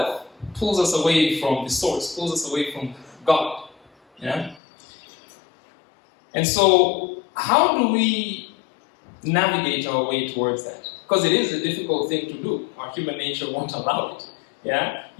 pulls us away from the source, pulls us away from God. Yeah? And so, how do we navigate our way towards that? Because it is a difficult thing to do. Our human nature won't allow it. Yeah?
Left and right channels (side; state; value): right; drops out; at 4.6 s